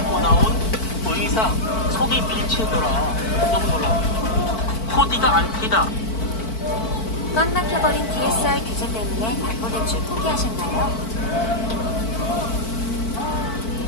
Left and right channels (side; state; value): right; late; 4.5 ms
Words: 나온 의상 속이 비치더라. 너무 놀라. 코디가 안 튀다. 꽉 막혀버린 DSR 규제 때문에 담보 대출 포기하셨나요?